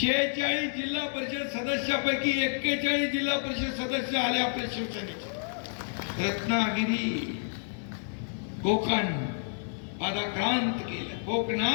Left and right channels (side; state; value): right; silent; digital silence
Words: जिल्हा परिषद सदस्यापैकी 41 जिल्हा परिषद सदस्य आले आपल्या शिवसेनेचे. रत्नागिरी, कोकण पादाक्रांत केलं.